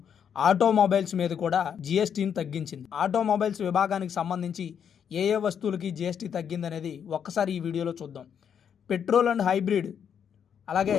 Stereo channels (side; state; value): right; quieter; 8.0 dB